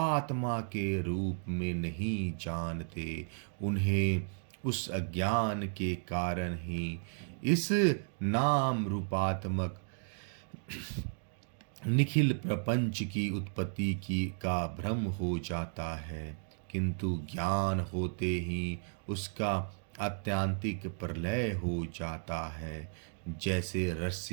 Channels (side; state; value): left; silent; digital silence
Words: के रूप में नहीं जानते, उन्हें उस अज्ञान के कारण ही इस नाम रूपात्मक निखिल प्रपंच की उत्पत्ति की का भ्रम हो जाता है, किंतु ज्ञान होते ही उसका आत्यांतिक प्रलय हो जाता है। जैसे